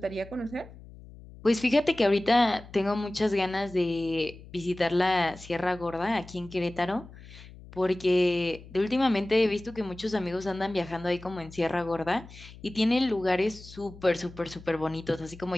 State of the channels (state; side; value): noise; left; hum, 18 dB below the sound